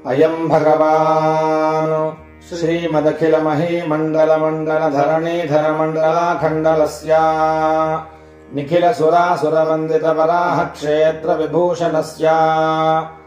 अयम् भगवान् श्रीमदखिलमहीमण्डलमण्डलधरणीधर मण्डलाखण्डलस्य निखिलसुरासुरवन्दितवराह क्षेत्र विभूषणस्य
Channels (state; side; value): identical; both; correlation 1.00